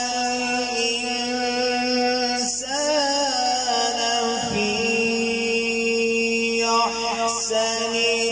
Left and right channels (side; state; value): right; noise; hum, 25 dB below the sound